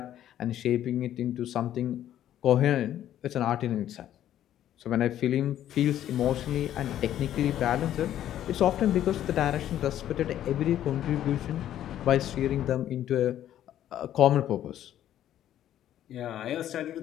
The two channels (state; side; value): quieter; right; 11.7 dB